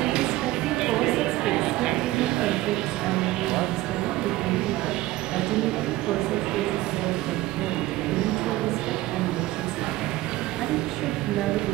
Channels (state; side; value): quieter; left; 17.3 dB